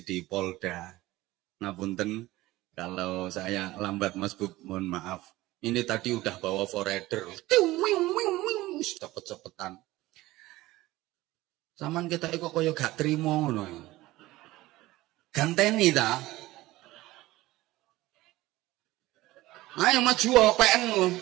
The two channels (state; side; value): quieter; left; 18.0 dB